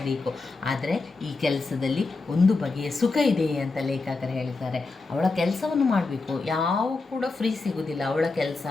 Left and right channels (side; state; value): right; quieter; 3.7 dB